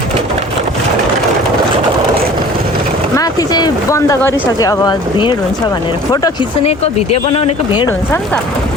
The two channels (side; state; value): both; normal; correlation 0.46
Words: माथि चाहिँ बन्द गरिसक्यो, अब भिड हुन्छ भनेर। फोटो खिच्नेको, भिडियो बनाउनेको भिड हुन्छ नि त।